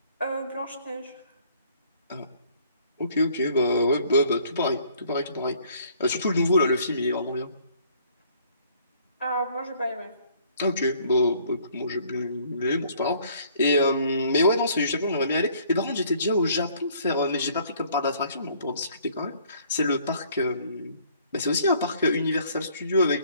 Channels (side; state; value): both; inverted; correlation -0.59